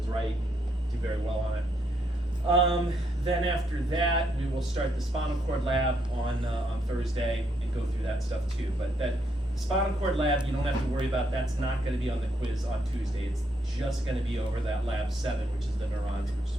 right, do very well on it. Then after that, we will start the spinal cord lab on Thursday and go through that stuff too. But that spinal cord lab, you don't have to worry about. That's not going to be on the quiz on Tuesday. It's just going to be over that lab 7, which is the neurons, which is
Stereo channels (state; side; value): normal; both; correlation 0.75